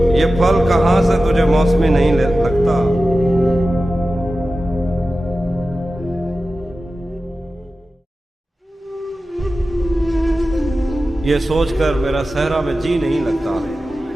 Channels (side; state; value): both; normal; correlation 0.94